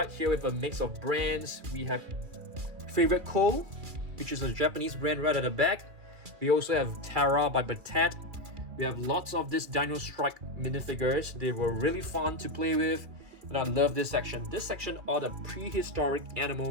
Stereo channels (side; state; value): left; late; 2.4 ms